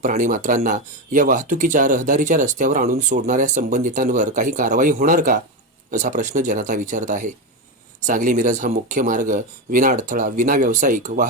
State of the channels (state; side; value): normal; both; correlation 0.13